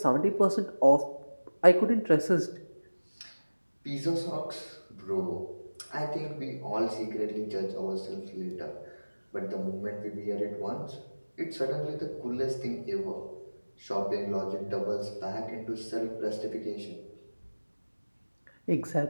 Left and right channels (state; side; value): inverted; both; correlation -1.00